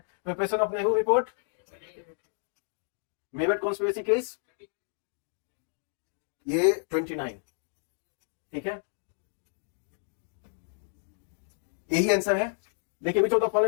Preparation of Nehru report, Meerut conspiracy case, ये 29, ठीक है। यही आंसर है। देखिए, which of the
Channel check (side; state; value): right; silent; digital silence